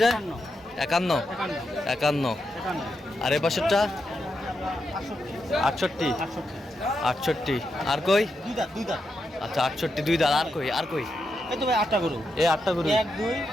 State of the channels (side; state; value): both; normal; correlation 0.85